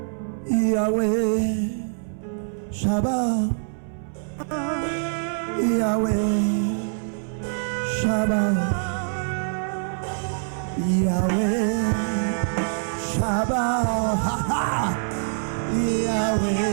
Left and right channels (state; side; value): silent; left; 62 dB below the other